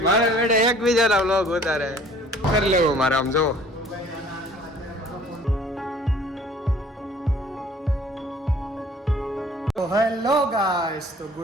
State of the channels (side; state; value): both; normal; correlation 0.53